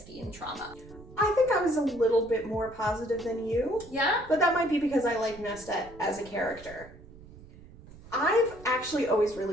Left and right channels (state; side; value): noise; right; rumble, 19 dB below the sound